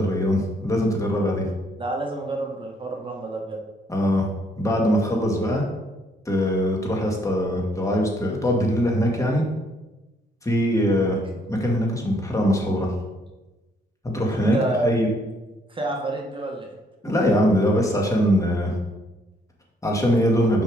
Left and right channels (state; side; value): normal; both; correlation 0.68